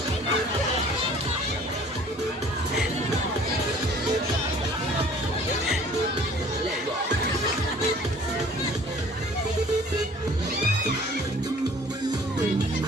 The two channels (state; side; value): normal; both; correlation 0.52